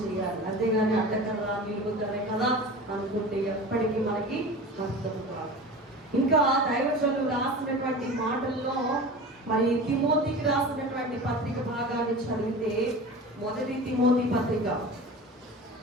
చేయాలి. అంతేగాని అడ్డకర్ర నిలుగుతానే కదా అనుకుంటే ఎప్పటికీ మనకి అర్థం కాదు. ఇంకా దైవజనులు రాసినటువంటి మాటల్లో మరి తిమోతికి రాసినటువంటి పత్రిక భాగాన్ని చదివితే, మొదటి తిమోతి పత్రిక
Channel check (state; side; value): normal; both; correlation 0.34